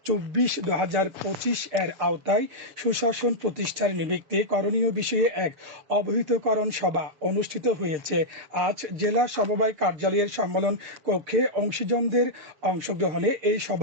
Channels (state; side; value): late; left; 7.0 ms